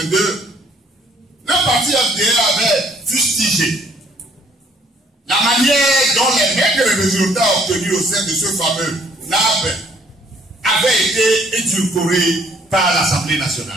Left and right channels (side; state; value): both; normal; correlation 0.62